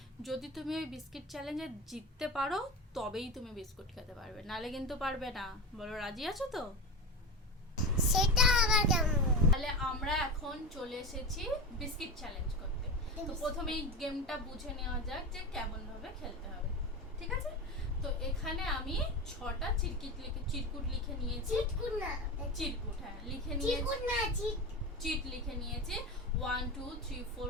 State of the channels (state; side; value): normal; both; correlation 0.23